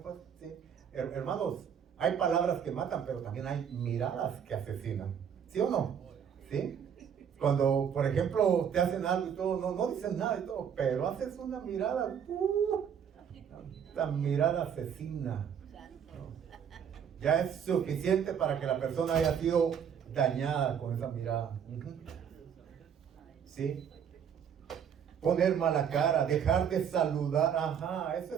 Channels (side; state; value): left; quieter; 8.0 dB